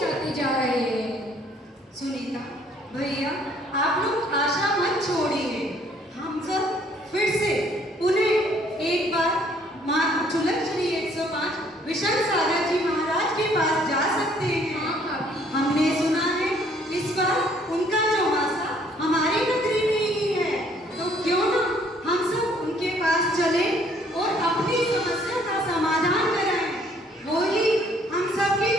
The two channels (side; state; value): both; normal; correlation 0.62